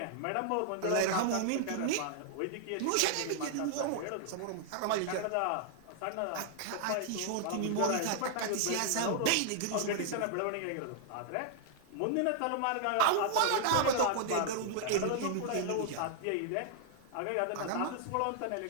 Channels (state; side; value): different; both; correlation -0.01